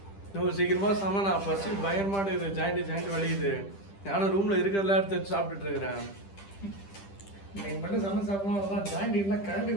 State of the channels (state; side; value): late; right; 10 ms